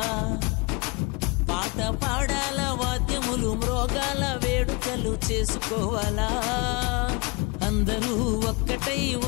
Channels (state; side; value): quieter; right; 28.4 dB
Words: పాట పాడాల వాద్యములు మ్రోగాల వేడుకలు చేసుకోవాలా అందరూ ఒక్కటై